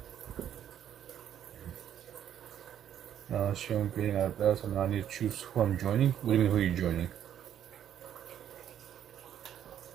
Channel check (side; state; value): left; quieter; 10.1 dB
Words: Showing getting out of bed, so now I need to choose who I'm joining. What do you mean, who are you joining?